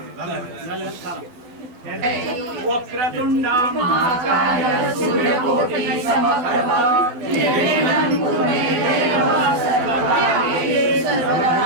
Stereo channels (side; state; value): left; late; 12 ms